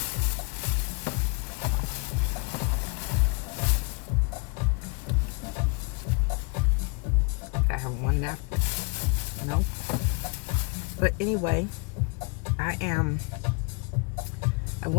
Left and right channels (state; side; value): quieter; right; 32.1 dB